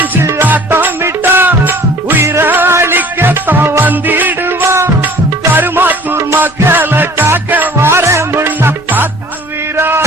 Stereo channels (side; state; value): left; noise; rumble, 24 dB below the sound